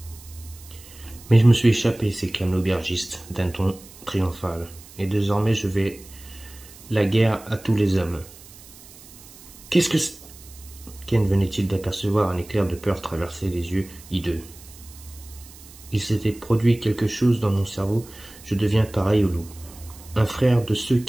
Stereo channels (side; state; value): right; noise; hiss, 20 dB below the sound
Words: Mais je me suis échappé, s'éclame l'aubergiste d'un ton triomphal, et désormais je vais la guerre à tous les hommes. Qu'est-ce que c'est? Ken venait-il d'apercevoir un éclair de peur traverser les yeux hideux. Il s'était produit quelque chose dans mon cerveau, je deviens pareil au loup. Un frère de ceux